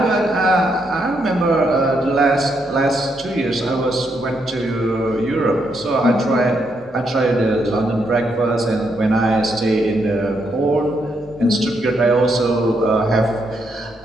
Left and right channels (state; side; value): normal; both; correlation 0.78